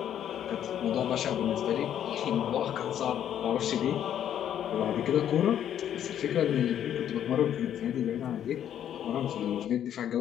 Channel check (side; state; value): right; quieter; 10.1 dB